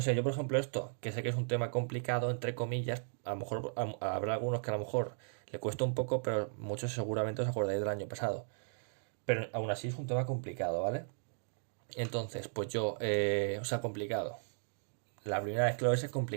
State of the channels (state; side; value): silent; left; digital silence